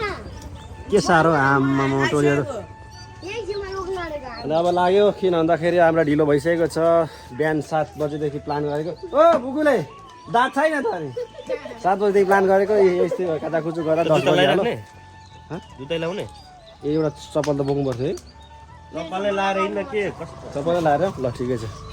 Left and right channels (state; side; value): identical; both; correlation 1.00